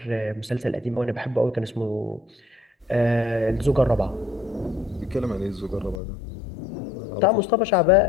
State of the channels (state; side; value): drops out; right; at 6.0 s